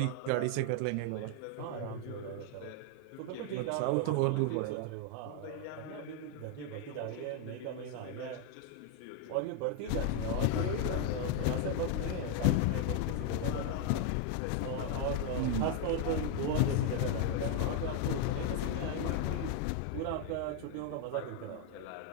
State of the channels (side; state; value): both; different; correlation 0.00